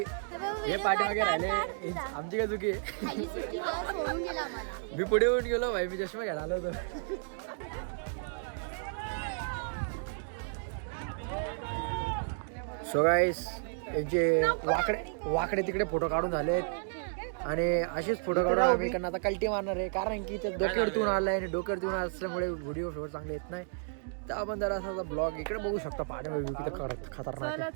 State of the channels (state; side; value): silent; left; digital silence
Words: राहिले. आमची काय चुकी आहे. मी पुढे येऊन गेलो भाई, मी चष्मा घ्यायला आलो होतो. सो गाईस यांचे वाकडे तिकडे फोटो काढून झालेत आणि असेच फोटो काढून आम्ही इकडनं आता कल्टी मारणार आहे. कारण की ते डोक्यावरती आलाय आणि डोक्यावरती असल्यामुळे व्हिडिओ शोर चांगले येत नाही. तर आपण जरा असा ब्लॉग इकडे बघू शकता. पाण्यामध्ये किती खतरनाक आहे.